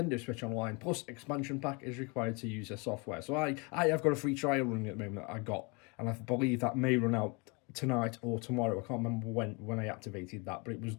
Switch Online plus expansion pack is required to use their software. So I have got a free trial running at the moment that I got, and I believe that may run out tonight or tomorrow. I can't remember when I activated that, but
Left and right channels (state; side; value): quieter; right; 30.5 dB